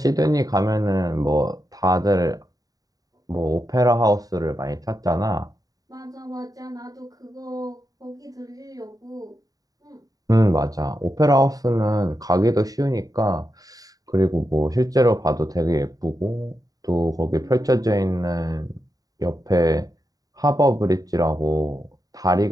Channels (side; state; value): left; late; 0.18 ms